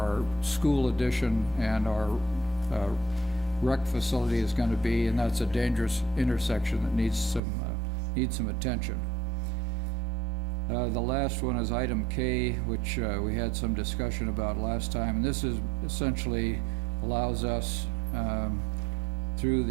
school addition and our rec facility is going to be, and that's a dangerous intersection that needs some attention. The last one is item K, which we had some discussion about last time, and this is essentially allows us through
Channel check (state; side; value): drops out; left; at 7.4 s